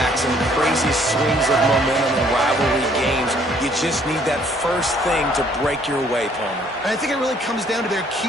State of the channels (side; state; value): both; normal; correlation 0.62